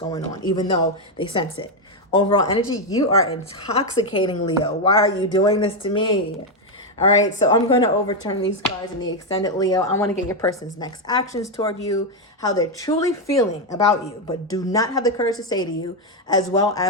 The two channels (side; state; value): both; normal; correlation 0.05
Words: on, even though they sense it. Overall energy, you are intoxicating, Leo. Why are you doing this to me? All right, so I'm going to overturn these cards in the extended, Leo. I want to get your person's next actions toward you, how they're truly feeling about you, but do not have the courage to say to you, as well